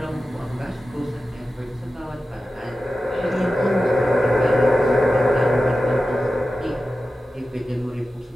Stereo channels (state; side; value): normal; both; correlation 0.93